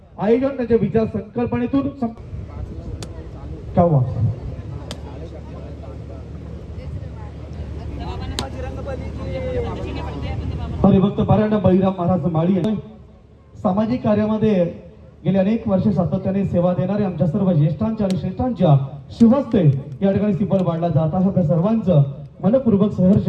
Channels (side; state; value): both; identical; correlation 1.00